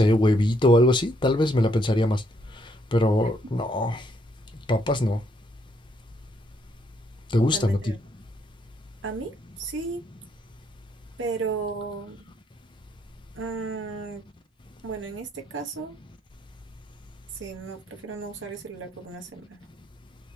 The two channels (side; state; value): both; normal; correlation 0.72